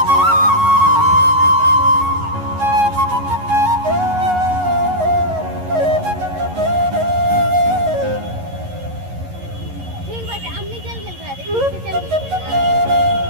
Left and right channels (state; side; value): late; left; 11 ms